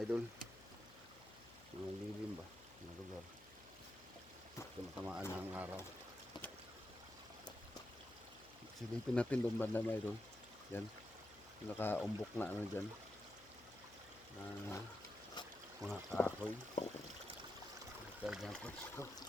idol. Mga lilim ba? Mga lugar. Matamaan ng araw. Silipin natin doon banda, mga idol. Yan. Nakaumbok na ano dyan. Mga kahoy. Kaya dyan po ito.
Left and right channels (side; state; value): left; noise; hum, 22 dB below the sound